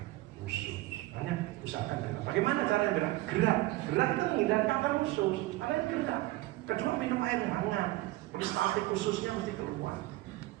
usus. Makanya usahakan berak. Bagaimana caranya berak? Gerak itu menghindari kanker usus, karena ini gerak. Kedua, minum air hangat, peristaltik khususnya mesti keluar.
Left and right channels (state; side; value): quieter; left; 18.4 dB